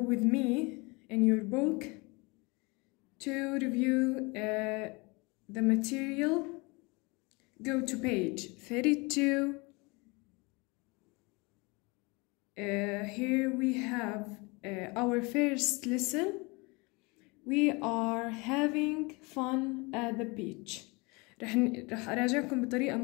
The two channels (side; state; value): right; quieter; 27.2 dB